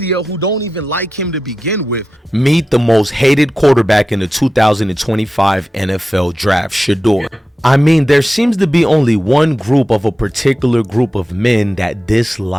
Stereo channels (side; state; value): both; normal; correlation 0.93